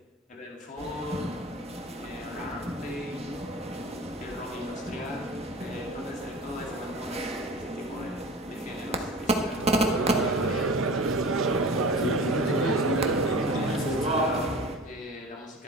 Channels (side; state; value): both; normal; correlation 0.37